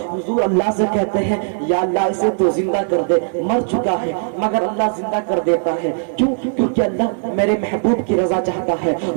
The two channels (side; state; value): left; silent; digital silence